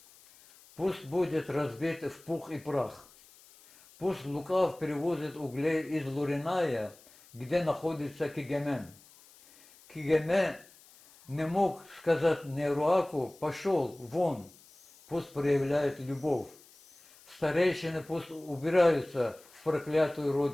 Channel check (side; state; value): left; noise; hiss, 25 dB below the sound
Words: пусть будет разбит в пух и прах. Пусть Лукав перевозит углей из Луриная, где находится Кигемен. Кигеме не мог сказать Неруаку: пошел вон, пусть проявляет любовь. Старейшины пусть убираются в проклятую